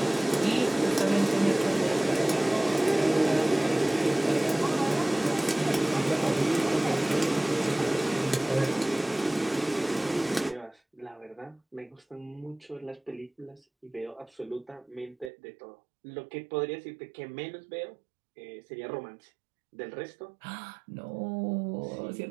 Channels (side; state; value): left; drops out; at 15.3 s